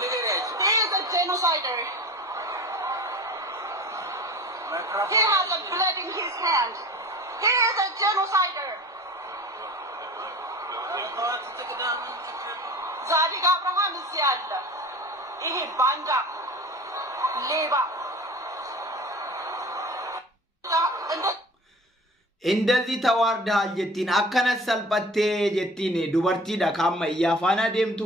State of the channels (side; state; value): both; normal; correlation 0.40